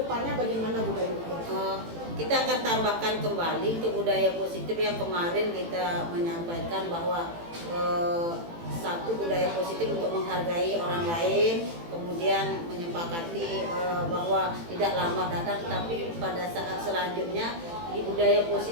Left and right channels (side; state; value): left; late; 18 ms